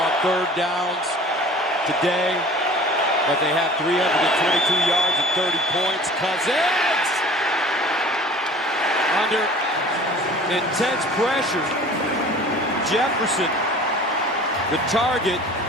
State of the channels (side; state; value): both; normal; correlation 0.45